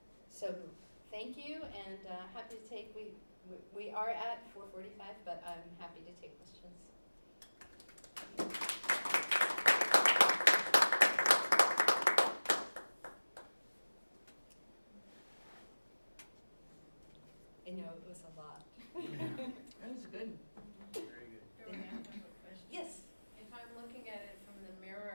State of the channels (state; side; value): inverted; both; correlation -1.00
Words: So thank you, and happy to take, we are at 4:45, but I'm happy to take questions. I know it was a lot. That was good. Very good. Dori, I have a question. Yes. If I'm looking at it from the